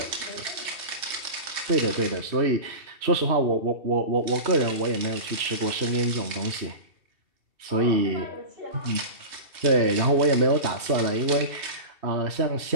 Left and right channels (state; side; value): late; left; 2.6 ms